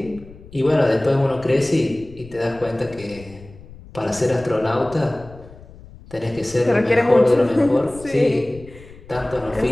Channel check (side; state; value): left; noise; rumble, 20 dB below the sound